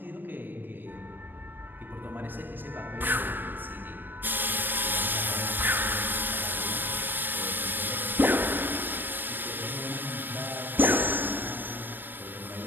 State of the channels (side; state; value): left; late; 0.093 ms